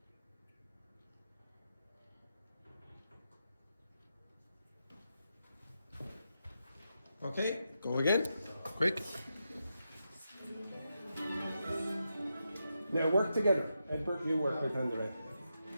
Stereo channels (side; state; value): both; inverted; correlation -0.86